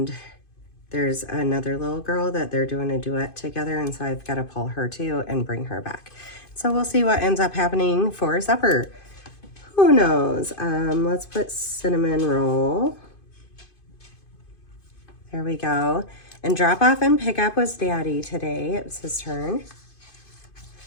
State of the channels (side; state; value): right; late; 2.5 ms